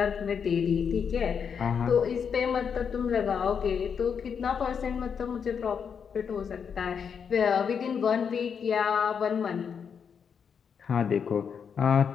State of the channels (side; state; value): right; quieter; 6.9 dB